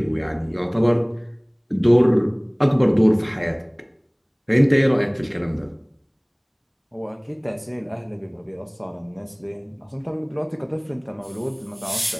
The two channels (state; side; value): identical; both; correlation 1.00